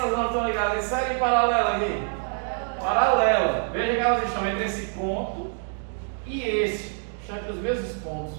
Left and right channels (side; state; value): left; silent; 56 dB below the other